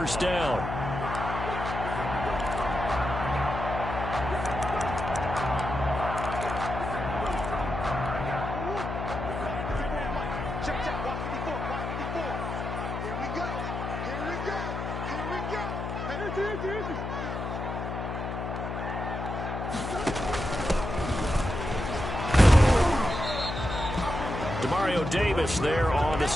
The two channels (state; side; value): noise; left; hum, 5 dB below the sound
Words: down. Check, check. Watch 54. Watch 54. Here we go. Here we go. Here we go. Demario Davis there on the